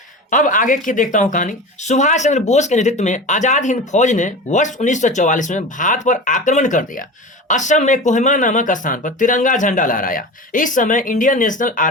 अब आगे की देखता हूं कहानी। सुभाष चंद्र बोस के नेतृत्व में आजाद हिंद फौज ने वर्ष 1944 में भारत पर आक्रमण कर दिया। असम में कोहिमा नामक स्थान पर तिरंगा झंडा लहराया। इस समय इंडियन नेशनल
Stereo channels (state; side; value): normal; both; correlation 0.31